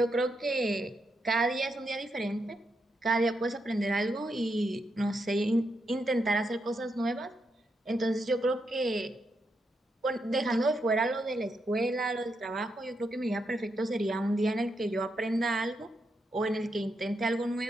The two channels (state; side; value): normal; both; correlation 0.82